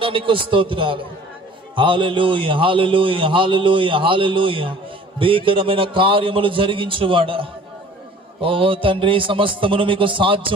స్తోత్రాలు. హల్లెలూయా హల్లెలూయా హల్లెలూయా హల్లెలూయా. భీకరమైన కార్యములు జరిగించువాడా, ఓ తండ్రి, సమస్తమును మీకు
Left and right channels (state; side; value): normal; both; correlation 0.49